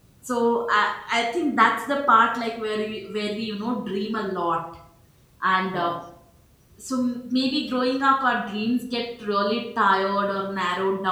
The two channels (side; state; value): both; identical; correlation 1.00